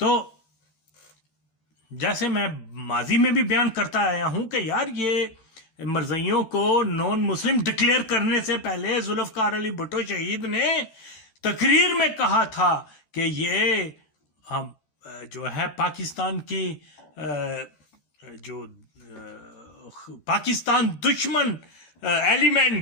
جیسے میں ماضی میں بھی بیان کرتا آیا ہوں کہ یار یہ مرزئیوں کو نون مسلم ڈکلیئر کرنے سے پہلے ذوالفقار علی بھٹو شہید نے تقریر میں کہا تھا کہ یہ ہم جو ہے پاکستان کی جو پاکستان دشمن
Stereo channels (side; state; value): right; late; 13 ms